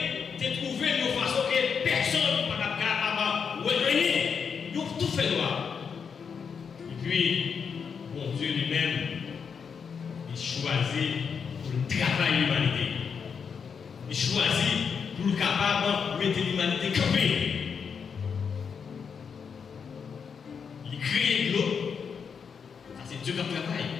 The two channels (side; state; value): right; quieter; 6.4 dB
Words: a trouvé une façon que personne ne peut pas capable de revenir, ils ont tout fait noir. Et puis, bon Dieu lui-même, il choisit pour travailler l'humanité. Il choisit pour le capable de mettre l'humanité campée. Il crée de l'eau. Ça, c'est Dieu qui travaille.